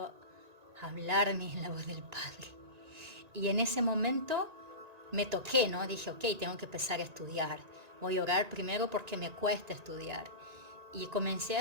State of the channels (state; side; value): late; left; 1.9 ms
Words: hablarme en la voz del Padre. Y en ese momento me toqué, ¿no? Dije, ok, tengo que empezar a estudiar. Voy a orar primero porque me cuesta estudiar. Y comencé a